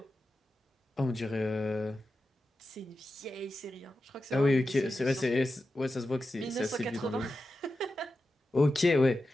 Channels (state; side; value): normal; both; correlation 0.91